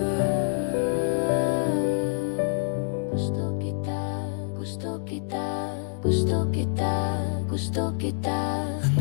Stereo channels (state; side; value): silent; right; digital silence